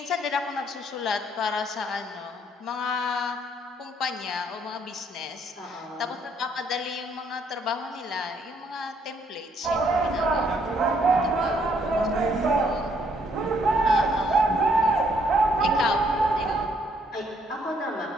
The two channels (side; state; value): both; normal; correlation 0.68